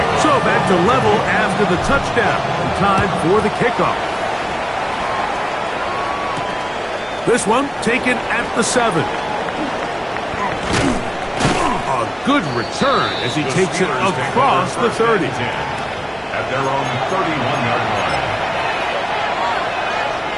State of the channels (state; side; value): identical; both; correlation 1.00